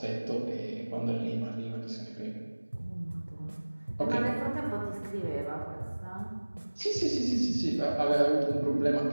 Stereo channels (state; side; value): inverted; both; correlation -1.00